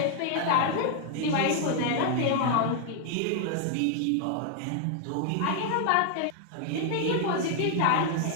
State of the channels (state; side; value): different; both; correlation -0.01